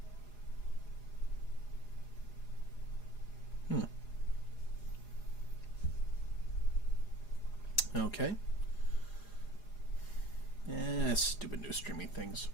Okay. Stupid new streaming things.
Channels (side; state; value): right; late; 4.9 ms